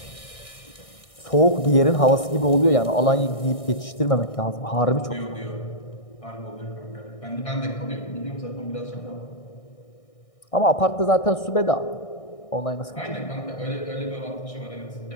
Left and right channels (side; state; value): right; late; 1.6 ms